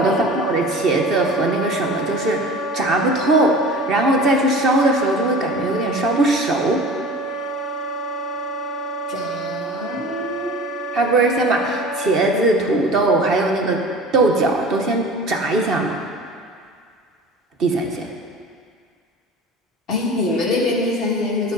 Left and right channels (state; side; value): normal; both; correlation 0.39